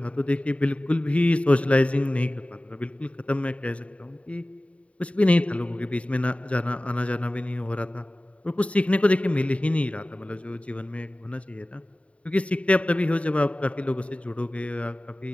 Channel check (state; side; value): late; right; 0.064 ms